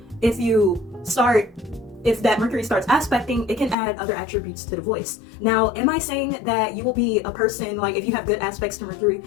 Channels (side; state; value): right; drops out; at 3.8 s